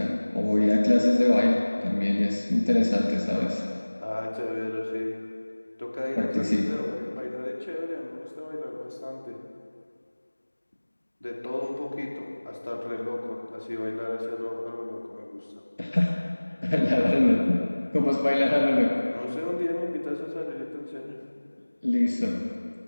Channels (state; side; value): inverted; both; correlation -1.00